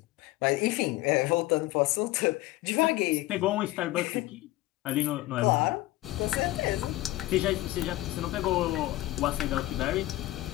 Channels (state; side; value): quieter; right; 17.9 dB